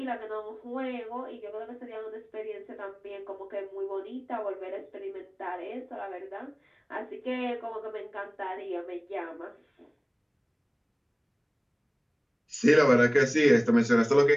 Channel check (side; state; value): both; identical; correlation 1.00